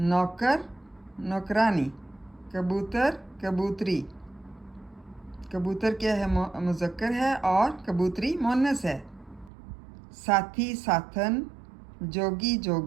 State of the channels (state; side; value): drops out; left; at 9.5 s